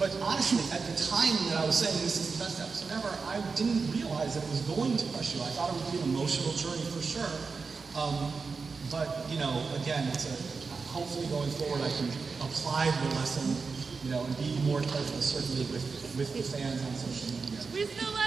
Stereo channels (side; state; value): left; quieter; 4.8 dB